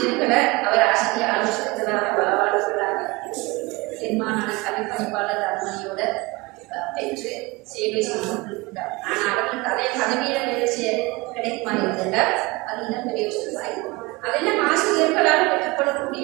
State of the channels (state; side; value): quieter; left; 24.1 dB